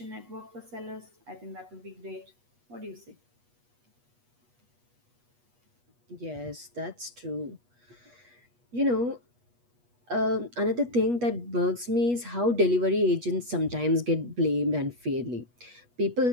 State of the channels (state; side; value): late; left; 8.3 ms